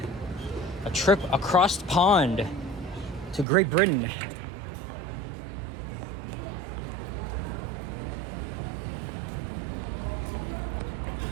A trip across the pond to Great Britain.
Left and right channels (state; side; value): drops out; left; at 3.5 s